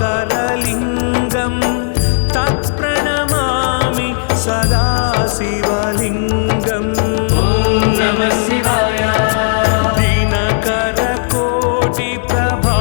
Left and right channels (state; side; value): silent; right; digital silence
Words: तत्प्रणमामि सदा शिवलिङ्गम्